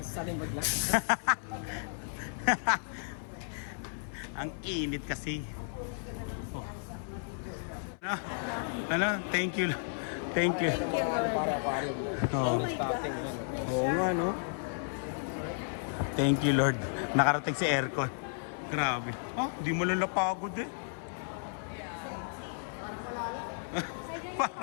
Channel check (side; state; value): right; silent; 56 dB below the other